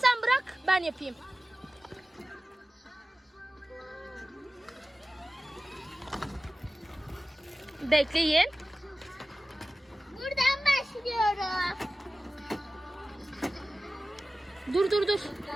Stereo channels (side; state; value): both; normal; correlation 0.96